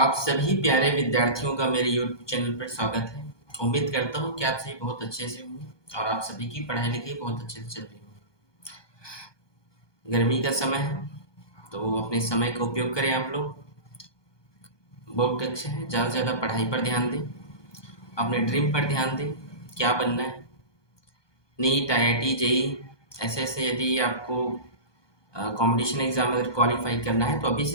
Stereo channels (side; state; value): right; late; 1.2 ms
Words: सभी प्यारे विद्यार्थियों का मेरे YouTube चैनल पर स्वागत है। उम्मीद करता हूँ कि आप सभी बहुत अच्छे से होंगे और आप सभी की पढ़ाई लिखाई बहुत अच्छे से चल रही हो। गर्मी का समय है तो अपने समय का उपयोग करें। आप लोग बोर्ड कक्षा है, ज़्यादा से ज़्यादा पढ़ाई पर ध्यान दें, अपने ड्रीम पर ध्यान दें। क्या बनना है, नीट, IIT, JEE ऐसे यदि आपको कंपटीशन एग्जाम अगर क्वालिफाई करना है तो अभी